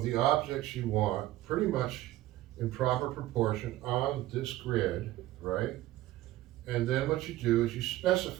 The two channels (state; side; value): quieter; left; 15.5 dB